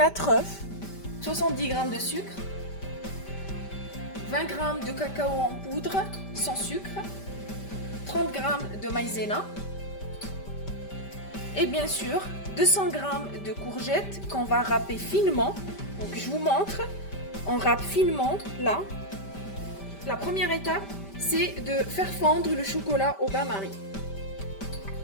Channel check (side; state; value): right; late; 5.1 ms